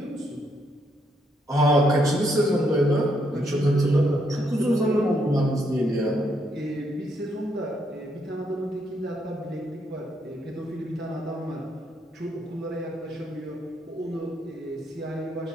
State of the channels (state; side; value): normal; both; correlation 0.75